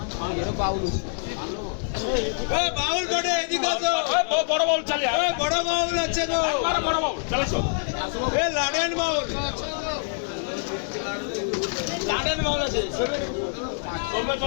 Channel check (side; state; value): right; silent; digital silence